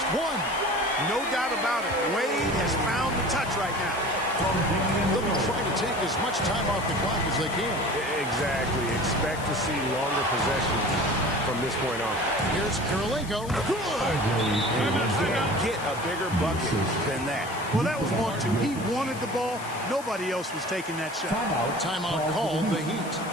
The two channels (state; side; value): noise; left; hiss, 16 dB below the sound